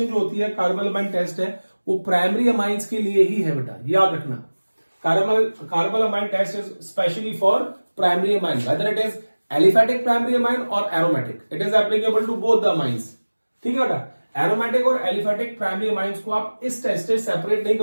जो होती है, कार्बल अमाइन टेस्ट है, वो प्राइमरी अमाइंस के लिए ही है बेटा, याद रखना। Carbylamine test is specially for primary amine, whether it is aliphatic primary amine or aromatic, it is applicable to both the amines, ठीक है बेटा। एरोमेटिक और एलिफेटिक प्राइमरी अमाइंस को आप इस टेस्ट से सेपरेट नहीं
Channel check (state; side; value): inverted; both; correlation -1.00